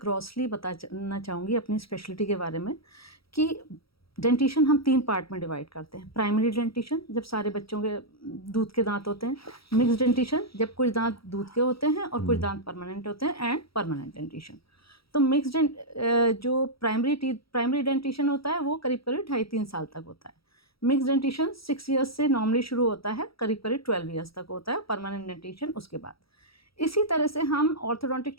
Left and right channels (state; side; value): late; right; 0.76 ms